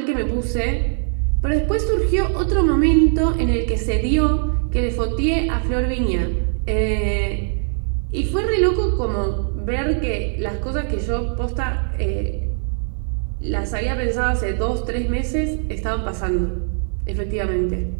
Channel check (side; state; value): left; silent; 63 dB below the other